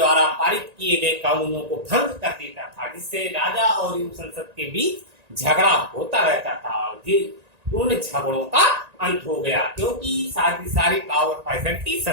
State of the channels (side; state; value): left; late; 1.9 ms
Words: पारित किए गए कानूनों को भंग कर देता था, जिससे राजा और संसद के बीच झगड़ा होता रहता था। उन झगड़ों का अंत हो गया, क्योंकि सारी पावर फैसिलिटी